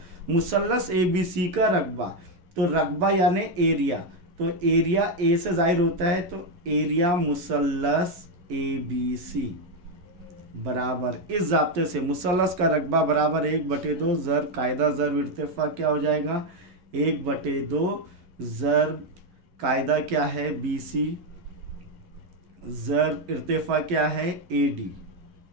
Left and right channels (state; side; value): late; left; 11 ms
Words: मुसल्लस ABC का रकबा, तो रकबा यानी एरिया, तो एरिया ए से जाहिर होता है, तो एरिया मुसल्लस ABC बराबर, इस ज़ाब्ते से मुसल्लस का रकबा बराबर 1/2 ज़र्ब कायदा ज़र्ब इर्तिफ़ा क्या हो जाएगा, 1/2 ज़र्ब कायदा क्या है BC ज़र्ब इर्तिफ़ा क्या है AD।